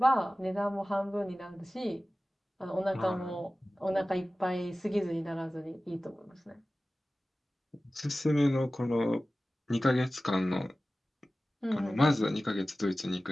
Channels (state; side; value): normal; both; correlation 0.96